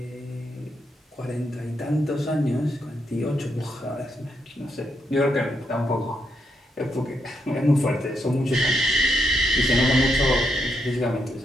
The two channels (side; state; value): both; normal; correlation 0.80